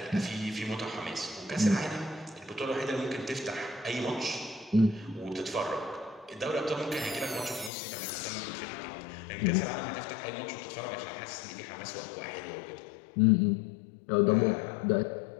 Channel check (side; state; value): right; drops out; at 7.7 s